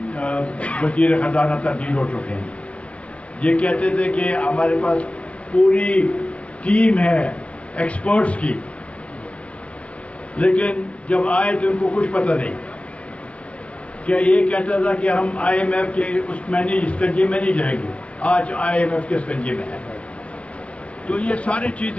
وزیر خزانہ تبدیل ہو چکے ہیں. یہ کہتے تھے کہ ہمارے پاس پوری ٹیم ہے ایکسپرٹس کی، لیکن جب آئے تو ان کو کچھ پتہ نہیں. کیا یہ کہتا تھا کہ ہم IMF کے اسکنجے میں نہیں جائیں گے، آج IMF کے اسکنجے میں ہے. تو یہ ساری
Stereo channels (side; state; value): right; late; 0.062 ms